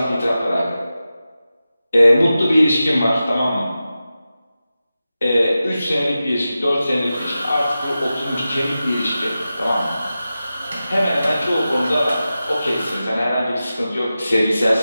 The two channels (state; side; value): inverted; both; correlation -0.93